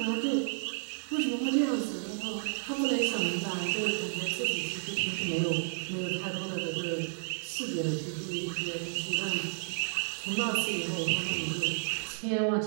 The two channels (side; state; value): left; silent; digital silence